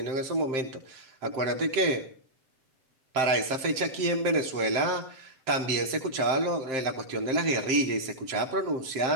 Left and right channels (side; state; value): left; late; 7.6 ms